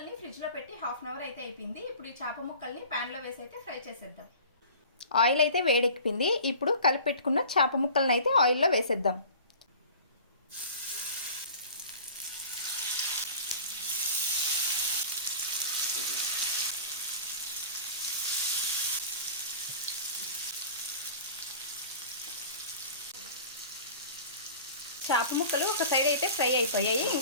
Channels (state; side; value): inverted; both; correlation -0.41